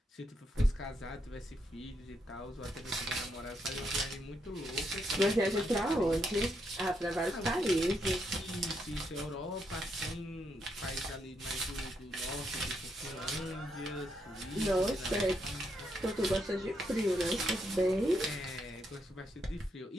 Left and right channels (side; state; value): both; normal; correlation 0.78